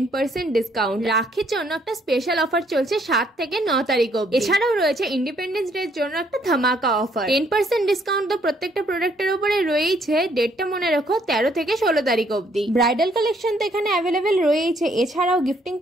ডিসকাউন্ট। রাখির জন্য একটা স্পেশাল অফার চলছে 7 থেকে 9 তারিখ অবধি। এছাড়াও রয়েছে ইন্ডিপেন্ডেন্স ডে এর জন্য একটা ধামাকা অফার। 10% ডিসকাউন্ট তো প্রত্যেকটা প্রোডাক্টের উপরে রয়েছে। ডেটটা মনে রাখো 13 থেকে 16 তারিখ অবধি। ব্রাইডাল কালেকশন তো এখানে অ্যাভেলেবেল রয়েছে। এছাড়াও গিফটিং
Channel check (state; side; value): normal; both; correlation 0.67